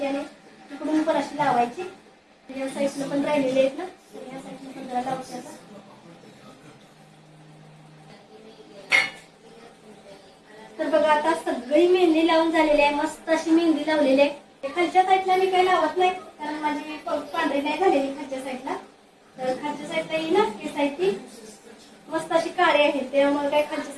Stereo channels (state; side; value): identical; both; correlation 1.00